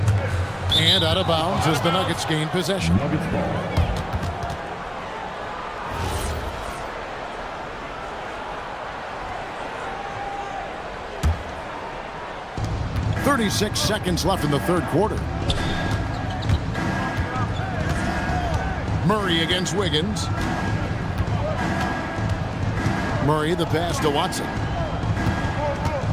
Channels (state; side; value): identical; both; correlation 1.00